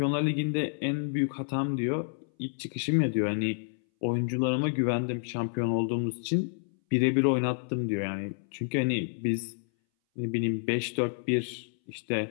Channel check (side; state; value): right; silent; 58 dB below the other